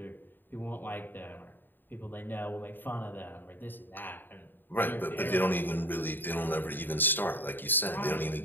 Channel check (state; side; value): late; right; 0.093 ms